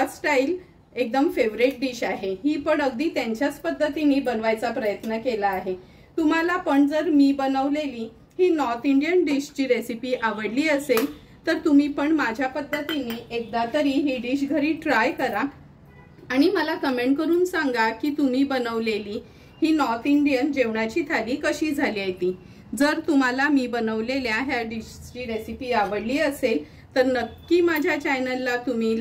स्टाईल एकदम फेवरेट डिश आहे। ही पण अगदी त्यांच्याच पद्धतीने बनवायचा प्रयत्न केला आहे। तुम्हाला पण जर मी बनवलेली ही नॉर्थ इंडियन डिशची रेसिपी आवडली असेल तर तुम्ही पण माझ्या पद्धतीने एकदा तरी ही डिश घरी ट्राय करा आणि मला कमेंट करून सांगा की तुम्ही बनवलेली ही नॉर्थ इंडियन जेवणाची थाली कशी झाली आहे ती। जर तुम्हाला मी बनवलेल्या ह्या डिशची रेसिपी आवडली असेल तर नक्की माझ्या चॅनलला तुम्ही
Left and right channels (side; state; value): both; identical; correlation 1.00